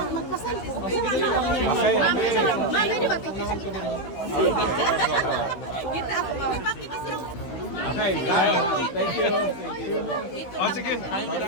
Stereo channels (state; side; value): late; right; 16 ms